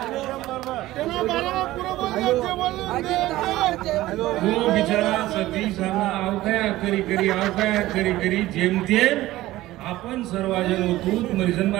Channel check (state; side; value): quieter; left; 16.5 dB